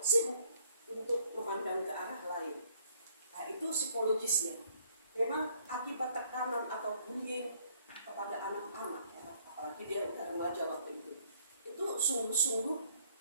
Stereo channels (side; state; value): both; inverted; correlation -0.63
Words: sibuk untuk memandang ke arah lain. Nah, itu psikologisnya. Memang akibat tekanan atau bullying kepada anak-anak, apalagi dia udah remaja waktu itu sungguh-sungguh